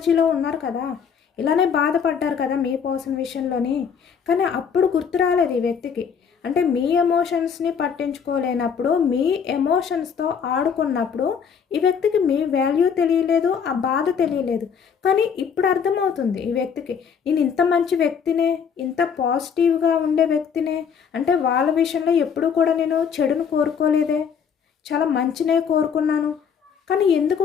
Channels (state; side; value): quieter; right; 6.9 dB